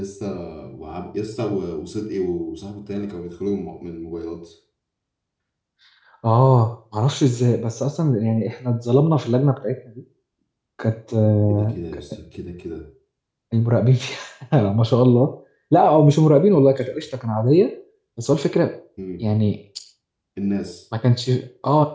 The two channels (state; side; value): identical; both; correlation 1.00